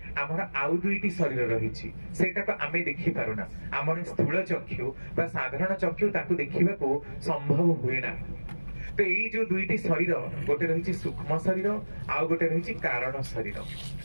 हमर आउ दुईटी शरीर रहिछि सेटा को आमे देखि पारुना हमर स्थूल चक्षु बा साधारण चक्षु ताकू देखिबा को संभव हुए ना तो ये जो दुईटी शरीर गोटे रहिछि सूक्ष्म शरीर आउ गोटे रहिछि कारण शरीर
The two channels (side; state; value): both; inverted; correlation -1.00